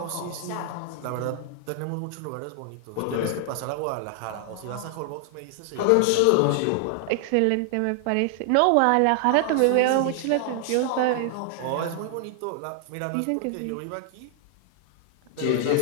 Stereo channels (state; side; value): different; both; correlation 0.00